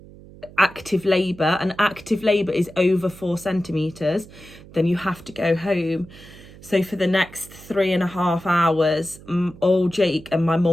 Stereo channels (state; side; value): noise; right; hum, 20 dB below the sound